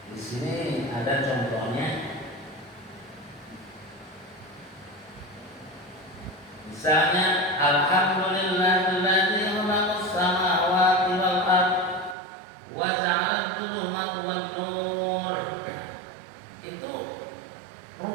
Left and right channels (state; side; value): drops out; left; at 12.2 s